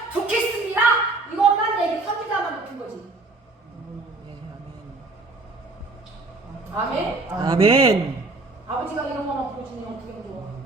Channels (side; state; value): left; quieter; 3.3 dB